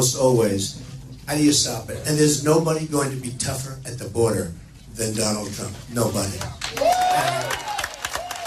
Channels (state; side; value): identical; both; correlation 1.00